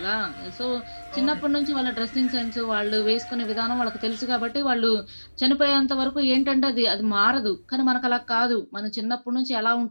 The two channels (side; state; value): both; inverted; correlation -1.00